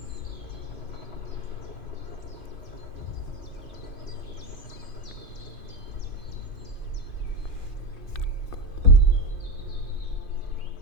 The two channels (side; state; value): right; late; 2.5 ms